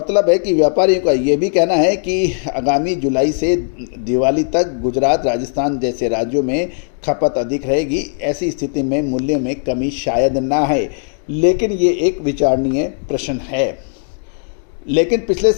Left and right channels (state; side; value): silent; right; 65 dB below the other